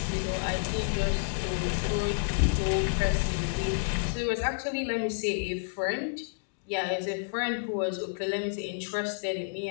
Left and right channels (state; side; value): silent; right; digital silence